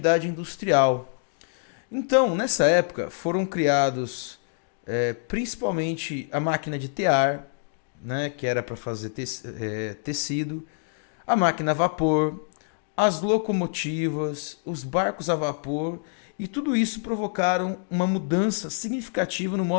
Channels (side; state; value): right; silent; digital silence